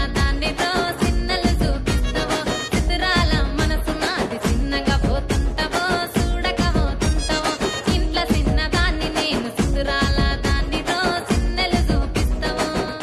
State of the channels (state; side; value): identical; both; correlation 1.00